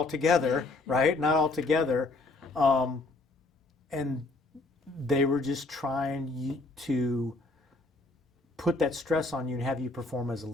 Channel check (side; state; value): right; quieter; 3.3 dB